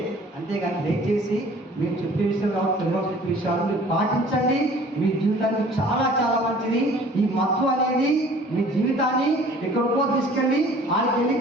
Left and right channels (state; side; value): normal; both; correlation 0.50